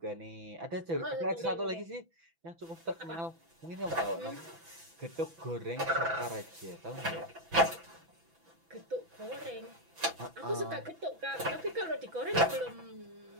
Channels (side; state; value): left; late; 6.0 ms